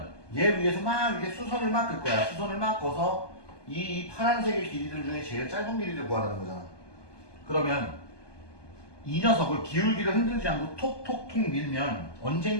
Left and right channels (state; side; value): late; right; 1.2 ms